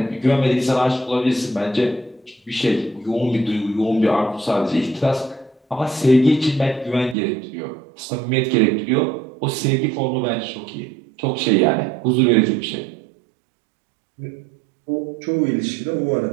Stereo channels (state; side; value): drops out; left; at 7.2 s